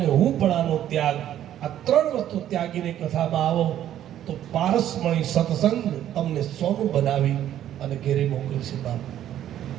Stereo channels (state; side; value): quieter; left; 11.5 dB